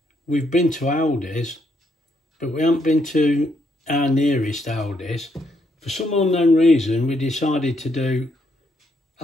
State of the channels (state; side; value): normal; both; correlation 0.75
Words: we've been to Aldi's, but we haven't been to our nearest Aldi's. For some unknown reason, we decided to do, I